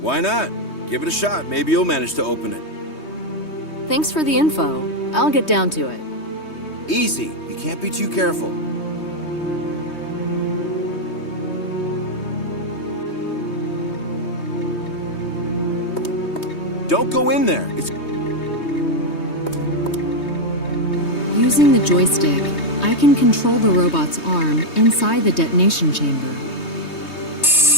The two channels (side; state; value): right; late; 3.2 ms